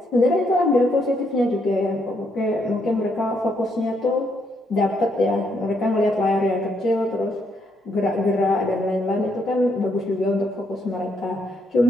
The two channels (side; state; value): both; normal; correlation 0.74